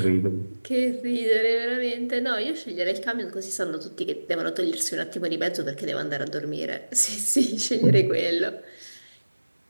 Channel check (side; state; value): both; inverted; correlation -1.00